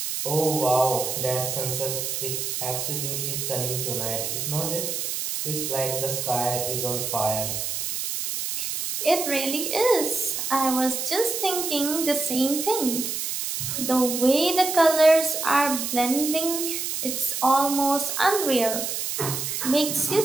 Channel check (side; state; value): right; noise; hiss, 3 dB below the sound